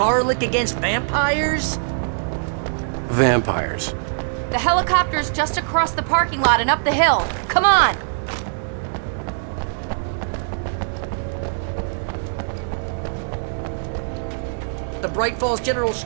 against vampires? Vampires. The helicopter's just across the parking lot and up the hill. Come on! The Bright Falls General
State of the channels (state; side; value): silent; left; 64 dB below the other